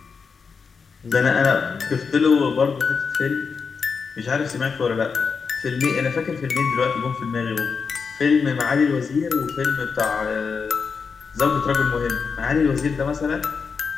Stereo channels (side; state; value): right; quieter; 5.5 dB